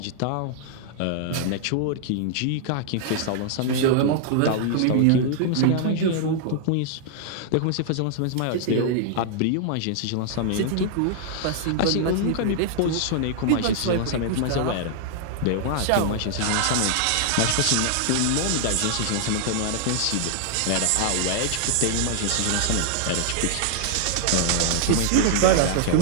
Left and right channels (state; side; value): different; both; correlation -0.01